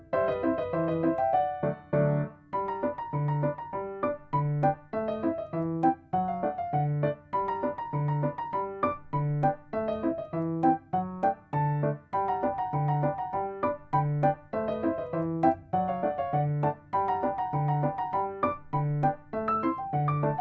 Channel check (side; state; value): both; identical; correlation 1.00